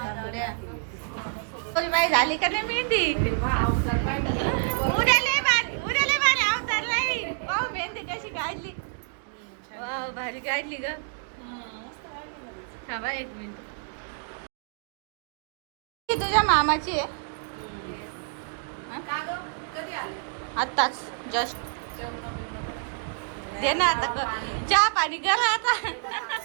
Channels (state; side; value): silent; left; 60 dB below the other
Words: बाई झाली का नाही मेहंदी? उद्या लय भारी अवतार नाही. पाहू मेहंदी कशी काढली. वाव भारी काढली ग. थांबा एक मिनिट. ही तुझ्या मामाची आहे? आत्ताच जस्ट दे ना आता. चहा पाणी करा आता.